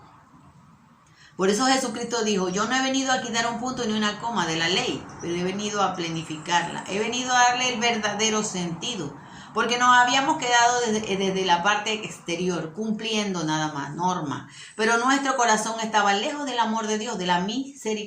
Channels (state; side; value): identical; both; correlation 1.00